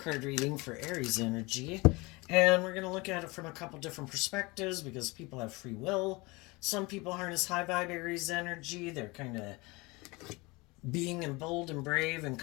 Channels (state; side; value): quieter; right; 24.5 dB